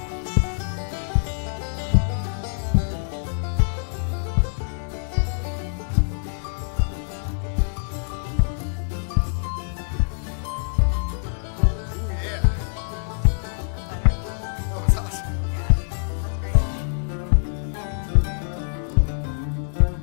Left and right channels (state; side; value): silent; right; digital silence